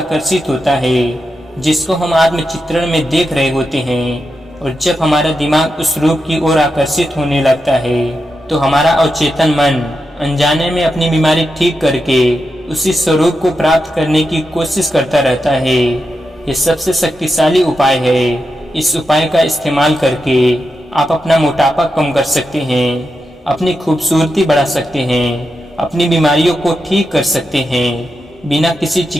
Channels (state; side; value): normal; both; correlation 0.88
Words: होता है जिसको हम आत्मचित्रण में देख रहे होते हैं। और जब हमारा दिमाग उस रूप की ओर आकर्षित होने लगता है, तो हमारा अवचेतन मन अनजाने में अपनी बीमारी ठीक करके उसी स्वरूप को प्राप्त करने की कोशिश करता रहता है। ये सबसे शक्तिशाली उपाय है। इस उपाय का इस्तेमाल करके आप अपना मोटापा कम कर सकते हैं, अपनी खूबसूरती बढ़ा सकते हैं, अपनी बीमारियों को ठीक कर सकते हैं। बिना किसी